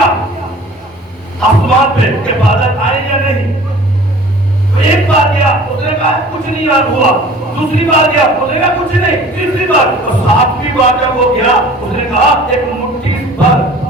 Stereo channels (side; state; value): both; normal; correlation 0.46